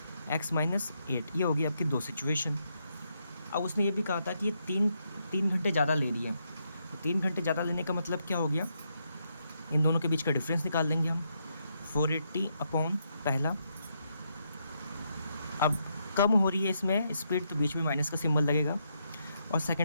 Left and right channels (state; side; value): inverted; both; correlation -0.79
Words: x माइनस 8, ये होगी आपकी दो सिचुएशन। अब उसने ये भी कहा था कि ये तीन घंटे ज़्यादा ले रही है, तो 3 घंटे ज़्यादा लेने का मतलब क्या हो गया, इन दोनों के बीच का डिफरेंस निकाल लेंगे हम, 480 अपॉन पहला, अब कम हो रही है इसमें स्पीड तो बीच में माइनस का सिंबल लगेगा, और